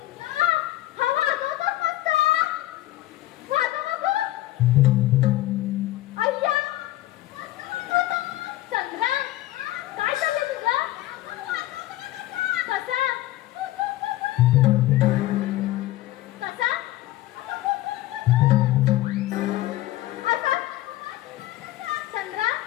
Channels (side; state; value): right; quieter; 15.8 dB